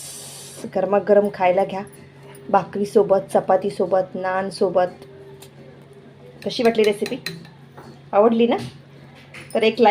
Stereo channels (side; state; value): both; identical; correlation 1.00